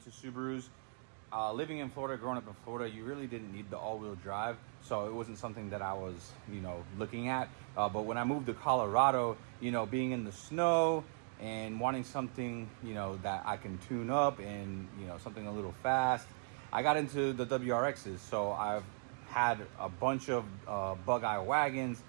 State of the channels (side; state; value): left; silent; 52 dB below the other